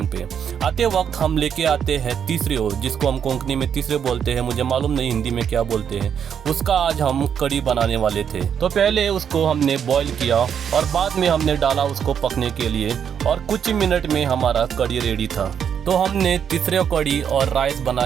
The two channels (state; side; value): quieter; left; 8.0 dB